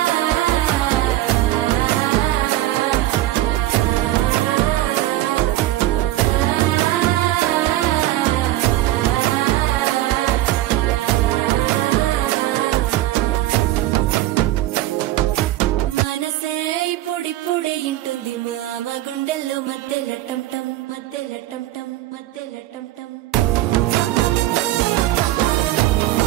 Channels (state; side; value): quieter; left; 15.3 dB